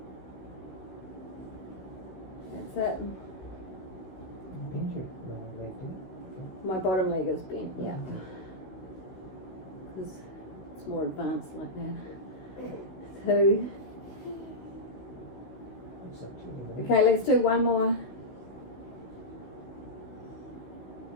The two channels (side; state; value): right; late; 16 ms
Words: That's it. Bend your leg, do you? My bottom leg is bent, yeah. Because it's more advanced like that. 2. Looks like 2. Okay, let's do one more.